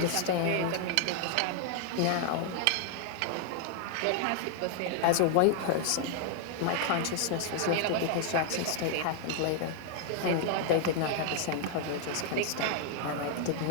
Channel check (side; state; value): both; different; correlation 0.00